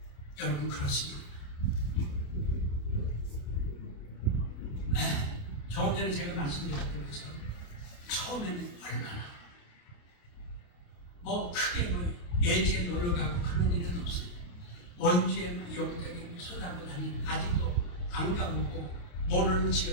여러분 그렇습니다. 조금 전에 제가 말씀드렸던 것처럼 처음에는 얼마나 크게 예지에 놀러 가고 그런 일은 없어요. 원주에 여기저기 쏟아고 다니는 아직도 안 가보고 모르는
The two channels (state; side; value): late; right; 28 ms